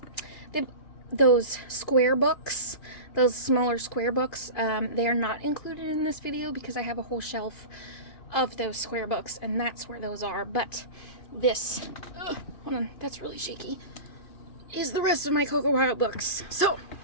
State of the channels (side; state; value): right; late; 2.5 ms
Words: those square books, those smaller square books. They are not included in this video because I have a whole shelf of those square books, and that's where those are. But this, hold on, that's really shaky, is the rest of my CocoWyo books. So,